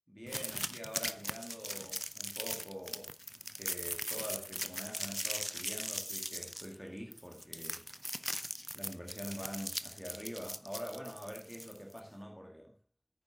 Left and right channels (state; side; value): identical; both; correlation 1.00